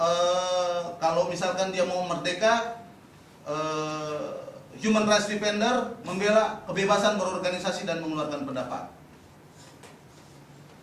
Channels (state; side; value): identical; both; correlation 1.00